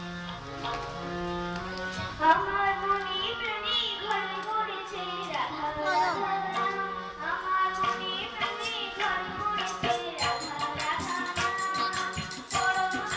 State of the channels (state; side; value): identical; both; correlation 1.00